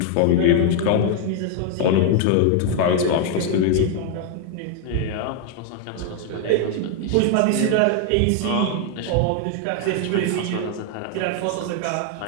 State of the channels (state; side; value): different; both; correlation 0.00